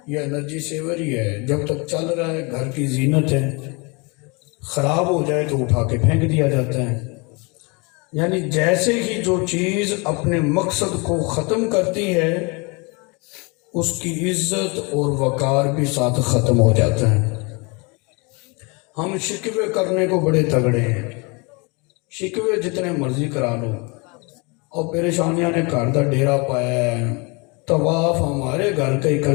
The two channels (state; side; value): quieter; right; 29.7 dB